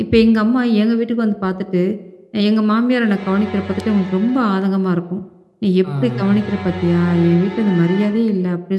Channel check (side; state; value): both; identical; correlation 1.00